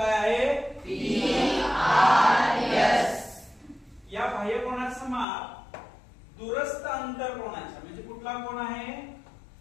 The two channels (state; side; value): drops out; right; at 5.2 s